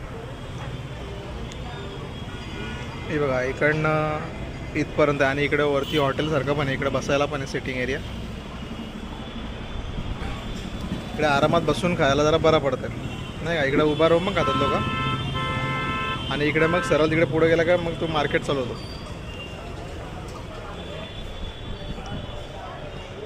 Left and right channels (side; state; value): both; identical; correlation 1.00